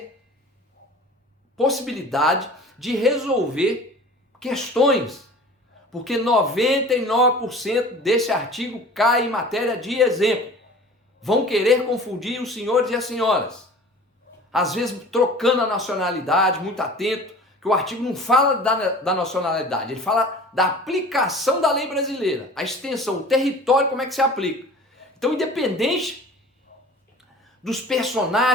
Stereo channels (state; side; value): normal; both; correlation 0.43